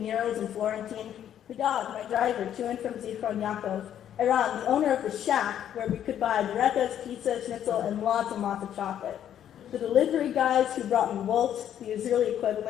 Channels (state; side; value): quieter; right; 10.2 dB